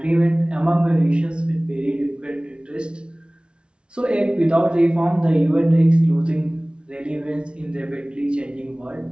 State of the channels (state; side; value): late; left; 0.057 ms